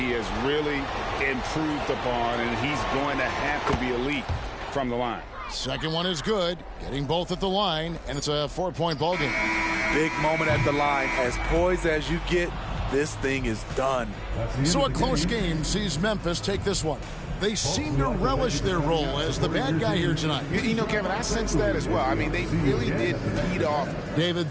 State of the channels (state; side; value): identical; both; correlation 1.00